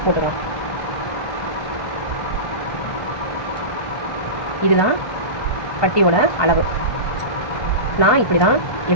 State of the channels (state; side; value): late; right; 1.2 ms